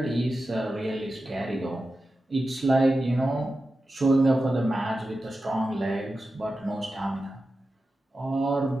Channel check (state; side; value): normal; both; correlation 0.92